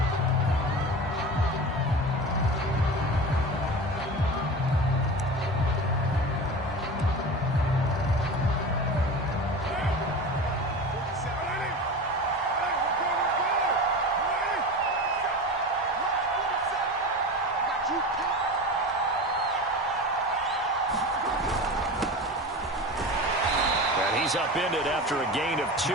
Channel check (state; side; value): normal; both; correlation 0.30